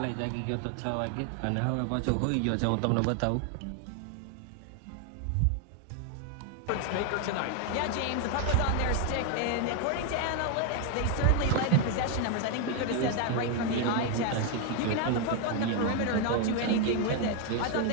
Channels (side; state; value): both; different; correlation 0.01